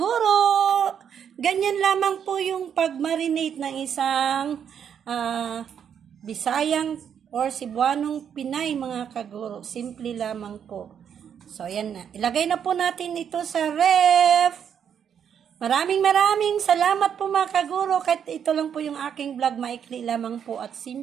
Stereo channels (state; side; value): quieter; left; 8.2 dB